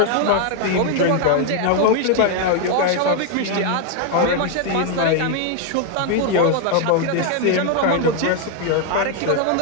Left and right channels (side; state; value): both; different; correlation 0.00